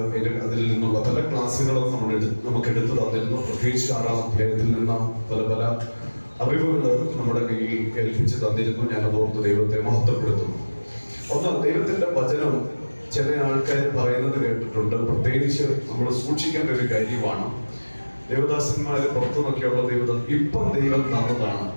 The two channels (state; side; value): inverted; both; correlation -1.00